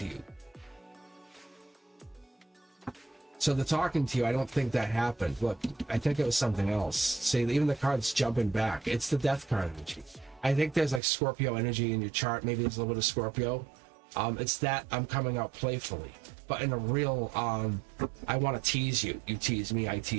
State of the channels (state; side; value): drops out; left; at 11.0 s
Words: you. So the talking to you, I don't think that happened. Look, I think it was something else. See, even the card's jumping back. It's the death card energy. I think there's like Scorpio energy in your chart. Maybe there's a little bit of Scorpio. It's that I'm coming out playfully. But in a real, I want to tease you. You tease me, I